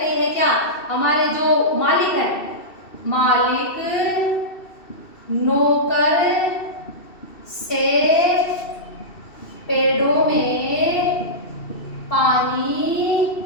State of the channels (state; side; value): late; right; 2.7 ms